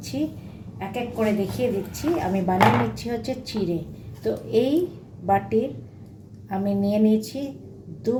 এক এক করে দেখিয়ে দিচ্ছি। আমি বানিয়ে নিচ্ছি হচ্ছে চিড়ে। তো এই বাটির আমি নিয়ে নিয়েছি 2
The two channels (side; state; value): both; identical; correlation 1.00